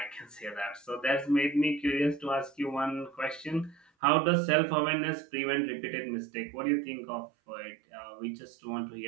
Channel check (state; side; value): drops out; left; at 3.8 s